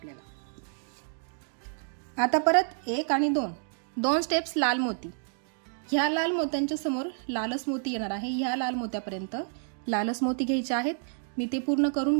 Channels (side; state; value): left; silent; digital silence